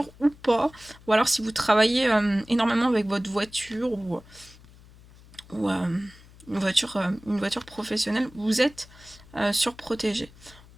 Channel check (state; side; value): noise; left; hum, 23 dB below the sound